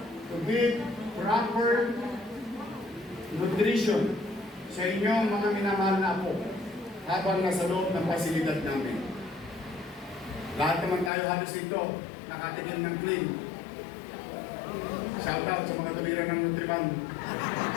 to build proper nutrition sa inyong mga minamahal na apo habang nasa loob ng pasilidad namin. Lahat naman tayo halos dito nakatikim ng clean. Shout out sa mga tumira ng Nutriban.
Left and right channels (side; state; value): right; drops out; at 11.1 s